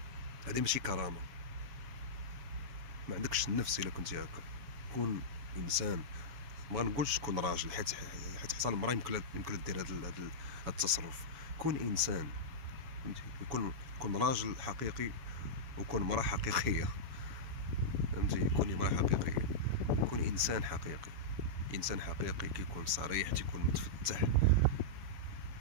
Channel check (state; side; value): late; left; 7.1 ms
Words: هذه ماشي كرامه، ما عندكش النفس الا كنتي هكا. كون انسان. ما نقولش كون راجل حيت حتى المراه يمكن دير هذا التصرف. كون انسان، فهمتي؟ كون راجل حقيقي وكون مراه حقيقيه، فهمتي؟ كوني مراه حقيقيه، كون انسان حقيقي. انسان حقيقي كيكون صريح، تيكون متفتح،